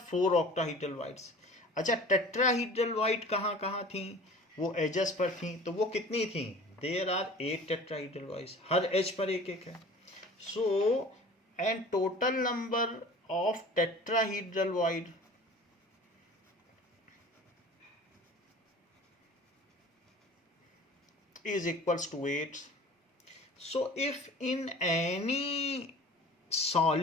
4 octahedral voids. अच्छा, टेट्राहीड्रल वॉइड कहाँ कहाँ थी? वो एजेस पर थी, तो वो कितनी थी? देयर आर 8 टेट्राहीड्रल वॉइड्स, हर एज पर एक एक है। So, and total number of tetrahedral void is equals to 8. So, if in any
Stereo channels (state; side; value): normal; both; correlation 0.43